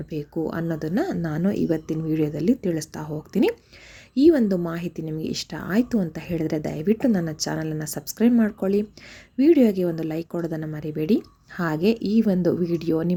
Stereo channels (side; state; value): both; identical; correlation 1.00